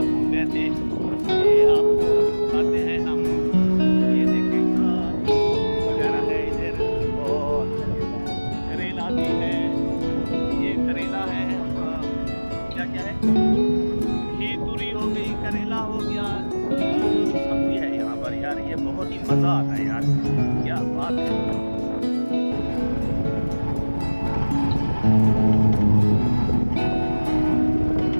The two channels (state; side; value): inverted; both; correlation -1.00